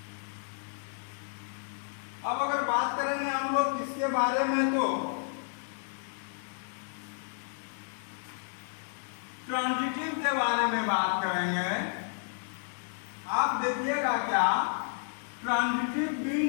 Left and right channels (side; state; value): right; silent; digital silence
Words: अब अगर बात करेंगे हम लोग किसके बारे में, तो ट्रांजिटिव के बारे में बात करेंगे। आप देखिएगा क्या, ट्रांजिटिव